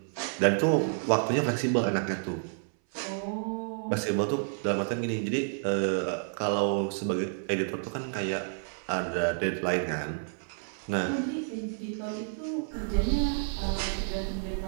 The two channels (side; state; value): left; silent; 58 dB below the other